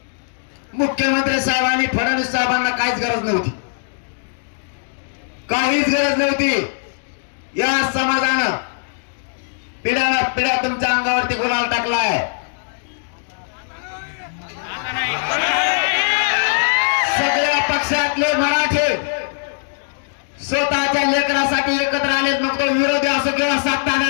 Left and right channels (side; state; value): right; silent; digital silence